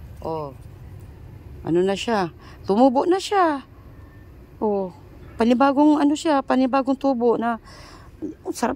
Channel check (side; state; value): both; identical; correlation 1.00